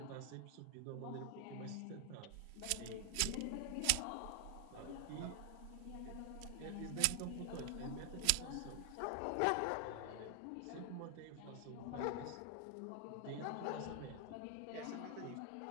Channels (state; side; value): different; both; correlation 0.00